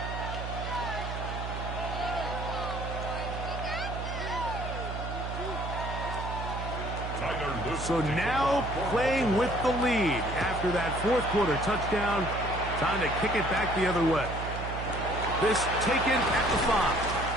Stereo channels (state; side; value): noise; right; hum, 6 dB below the sound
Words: So now playing with the lead after that 4th quarter touchdown. Time to kick it back the other way. This taken at the